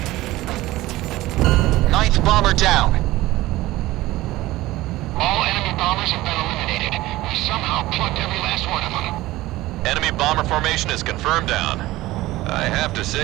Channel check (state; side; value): quieter; left; 17.6 dB